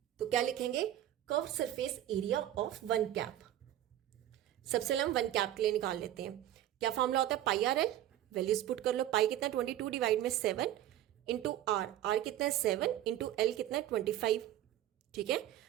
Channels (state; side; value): quieter; left; 12.6 dB